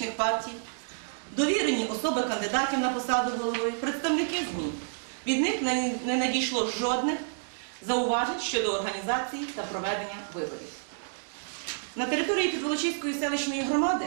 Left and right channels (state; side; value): silent; left; digital silence